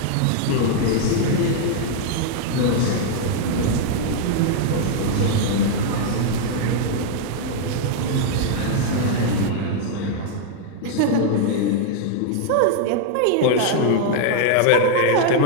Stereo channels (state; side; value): different; both; correlation 0.00